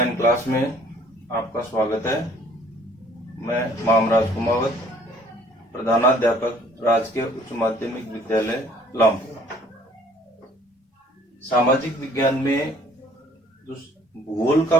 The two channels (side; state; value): both; normal; correlation 0.57